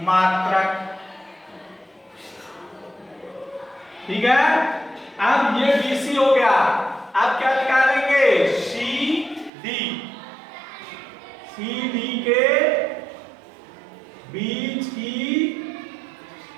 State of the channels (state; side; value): drops out; left; at 9.5 s